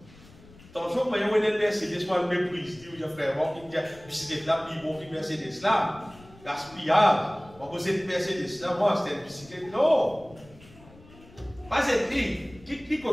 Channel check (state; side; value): noise; left; rumble, 23 dB below the sound